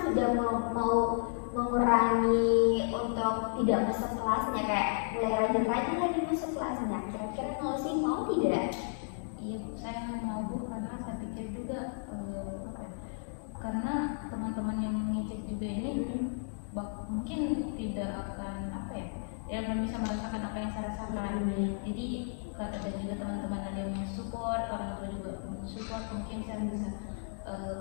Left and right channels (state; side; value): silent; right; digital silence